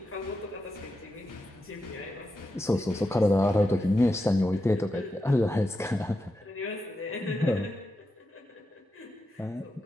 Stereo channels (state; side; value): normal; both; correlation 0.88